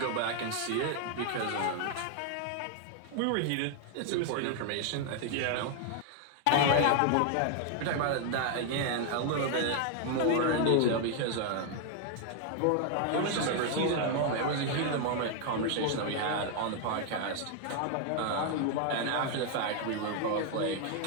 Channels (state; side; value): different; both; correlation 0.00